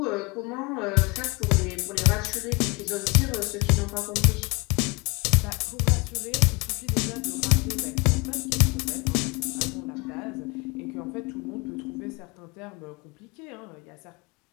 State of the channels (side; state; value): right; quieter; 27.2 dB